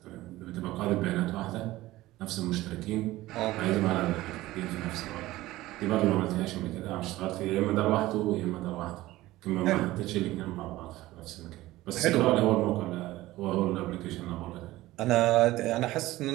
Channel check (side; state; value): left; quieter; 17.2 dB